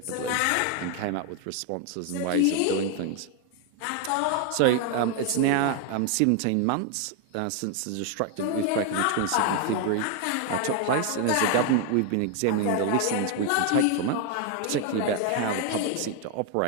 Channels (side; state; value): both; different; correlation 0.01